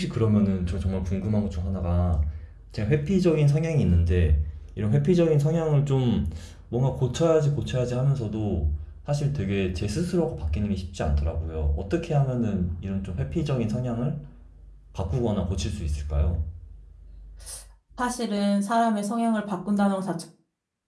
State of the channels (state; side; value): identical; both; correlation 1.00